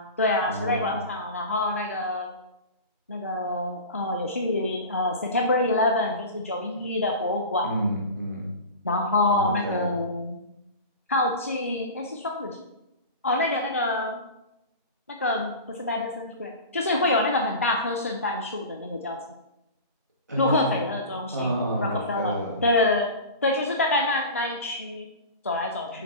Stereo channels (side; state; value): both; inverted; correlation -0.32